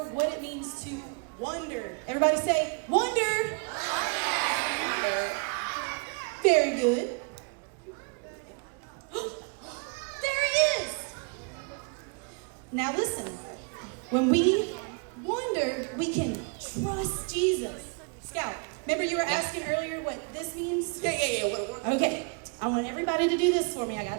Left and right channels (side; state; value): left; quieter; 35.8 dB